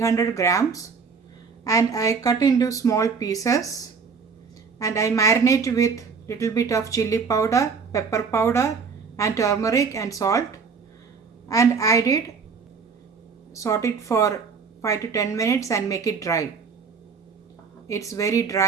grams and I cut into small pieces and I marinate with little bit of chili powder, pepper powder and turmeric and salt, and I did saute it for 5 to 10 minutes and make it dry. It's very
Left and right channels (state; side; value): quieter; left; 5.4 dB